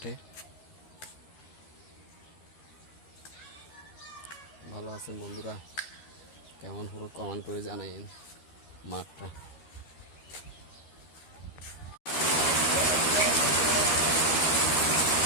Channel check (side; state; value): right; late; 13 ms